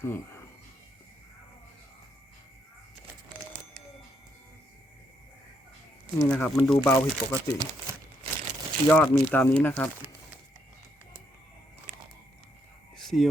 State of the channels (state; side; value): normal; both; correlation 0.76